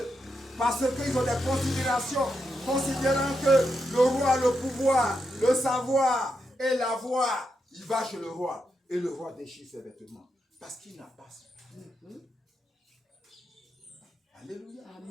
parce qu'ils ont des considérations, considérant que le roi a le pouvoir, le savoir et la voix, il va chez le roi et le roi déchire ses vêtements parce qu'il n'a pas su. Alléluia.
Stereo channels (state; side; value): normal; both; correlation 0.84